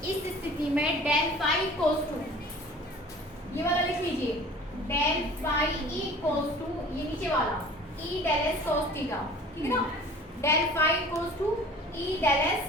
में डेल फाई इक्वल्स टू, ये वाला लिख लीजिए, del phi E equals to, ये नीचे वाला E del S cos theta, ठीक है ना। Del phi equals to E del S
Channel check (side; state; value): both; normal; correlation 0.45